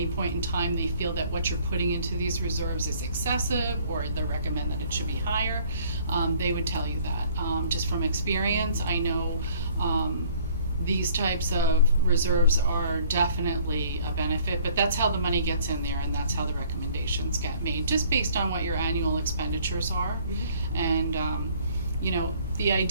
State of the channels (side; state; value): both; inverted; correlation -0.58